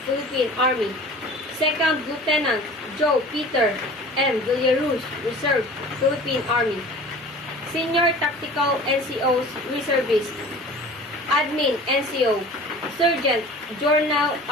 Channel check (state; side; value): normal; both; correlation 0.42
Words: Philippine Army. 2nd Lieutenant Joe Peter M. Villaruz, Reserve, Philippine Army. Senior Tactical NCOs, Reservist. Admin NCO, Sergeant Jornal